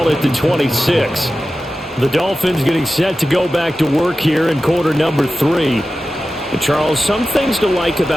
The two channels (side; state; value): both; normal; correlation 0.94